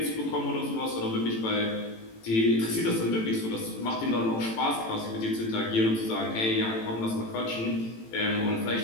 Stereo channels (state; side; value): late; right; 18 ms